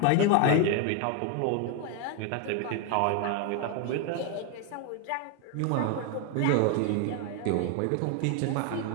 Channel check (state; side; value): different; both; correlation 0.01